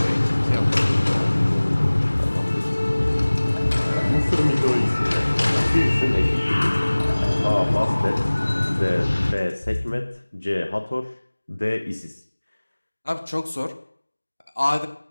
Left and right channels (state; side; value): inverted; both; correlation -1.00